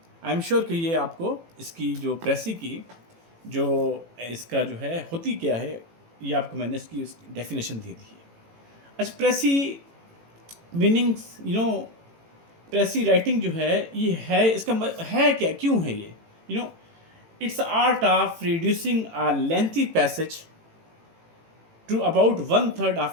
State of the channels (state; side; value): late; left; 18 ms